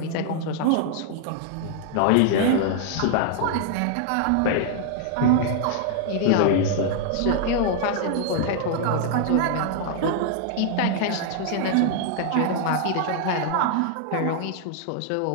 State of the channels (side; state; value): both; different; correlation 0.00